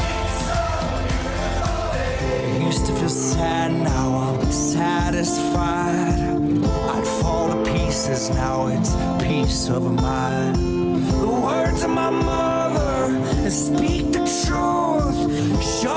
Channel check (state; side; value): identical; both; correlation 1.00